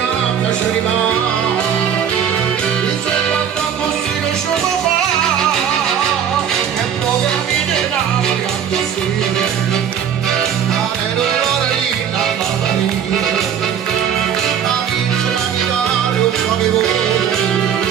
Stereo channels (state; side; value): quieter; left; 8.5 dB